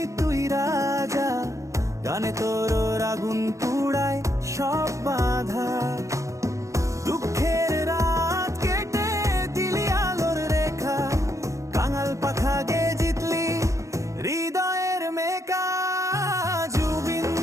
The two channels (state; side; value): late; left; 0.15 ms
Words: তুই রাজা, গানে তোর আগুন পুড়ায় সব বাধা। দুঃখের রাত কেটে দিলি আলোর রেখা, কাঙাল পাখা গে জিতলি হৃদয়ের মেকা। জুবিন